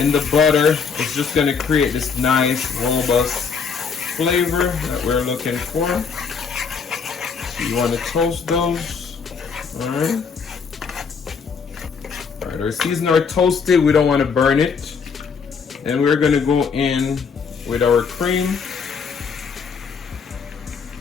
the butter, it's just going to create this nice robust flavor that we're looking for. So you want to toast those. Alright. Alright, our seasonings are toasted. We don't want to burn it. And we're going to go in with our cream.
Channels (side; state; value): right; quieter; 5.7 dB